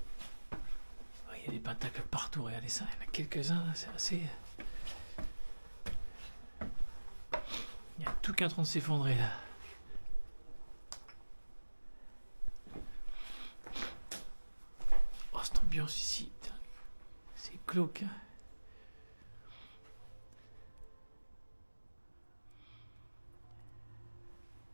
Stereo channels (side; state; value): both; inverted; correlation -1.00